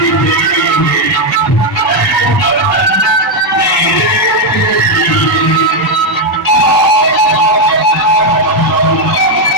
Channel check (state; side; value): normal; both; correlation 0.03